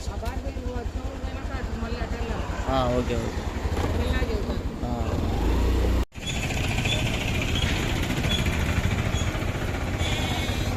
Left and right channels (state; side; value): identical; both; correlation 1.00